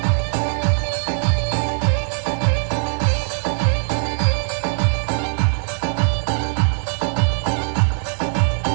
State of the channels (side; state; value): left; silent; digital silence